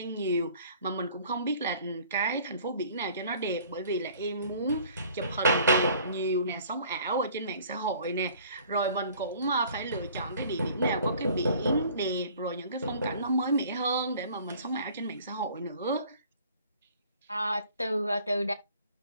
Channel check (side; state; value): both; inverted; correlation -0.53